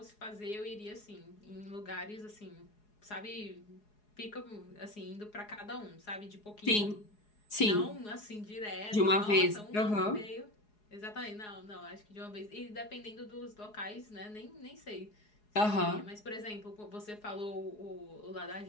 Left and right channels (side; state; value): right; late; 4.8 ms